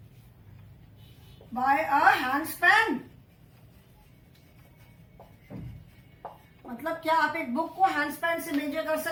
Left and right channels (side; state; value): both; identical; correlation 1.00